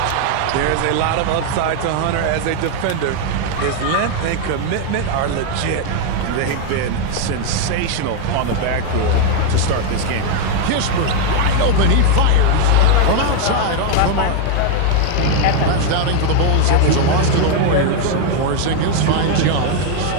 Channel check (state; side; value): different; both; correlation 0.01